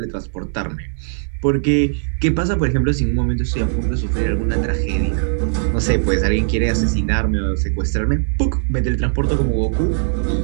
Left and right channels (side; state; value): left; silent; digital silence